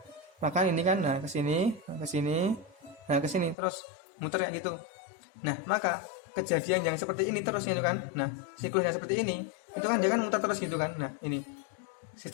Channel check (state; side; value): drops out; right; at 3.6 s